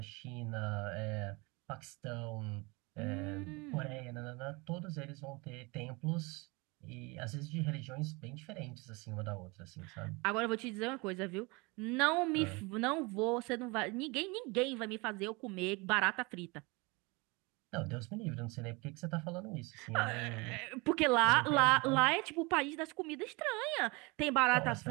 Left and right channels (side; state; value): left; quieter; 26.7 dB